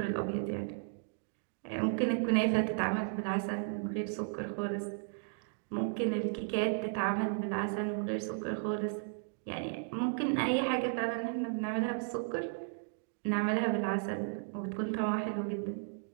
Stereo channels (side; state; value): left; silent; digital silence